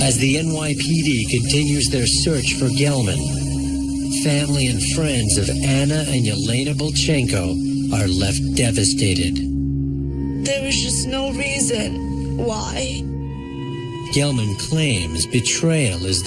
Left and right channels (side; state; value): both; identical; correlation 1.00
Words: the NYPD continues their search for Gelman, family and friends of Anna and Yelena Bolchenko are left devastated. There was just no reason why. Gelman claims betrayal is